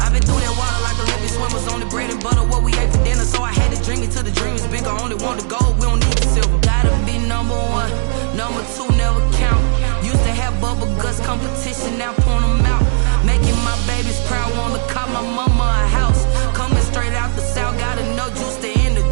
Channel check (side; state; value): left; silent; digital silence